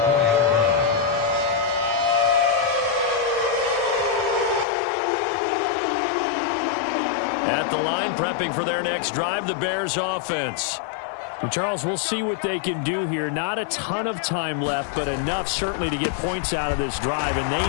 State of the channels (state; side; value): drops out; right; at 4.7 s